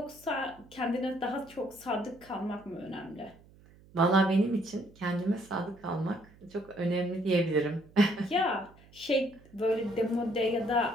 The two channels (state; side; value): noise; right; hum, 25 dB below the sound